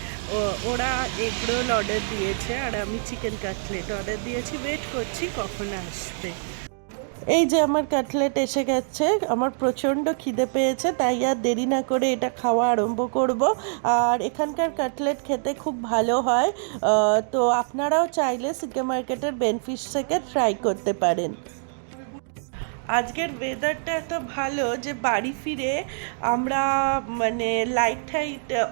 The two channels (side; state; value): left; silent; digital silence